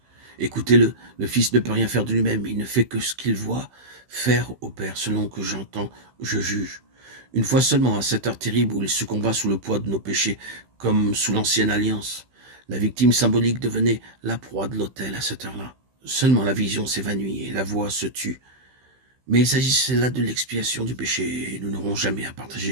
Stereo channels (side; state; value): left; late; 15 ms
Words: Écoutez-le, le Fils ne peut rien faire de lui-même, il ne fait que ce qu'il voit faire au Père, selon que j'entends, je juge. Une fois seulement, à cette heure terrible où il succomba sous le poids de nos péchés, comme sous l'ancienne alliance, la victime symbolique devenait la proie de l'autel à cette heure-là. Seulement la vision s'évanouit et la voix se tut. Mais il s'agissait là de l'expiation du péché, et nous n'aurons jamais à